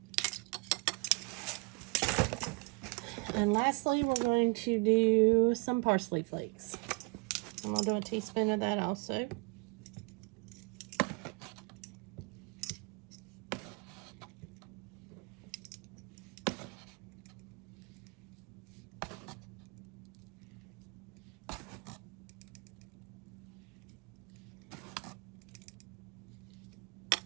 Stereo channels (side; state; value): left; quieter; 31.0 dB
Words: And lastly, we're going to do some parsley flakes. I'm going to do a teaspoon of that also.